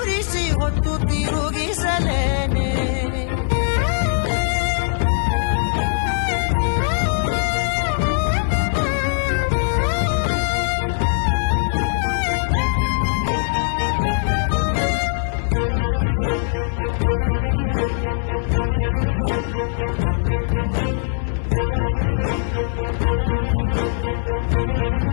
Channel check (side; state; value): right; silent; 58 dB below the other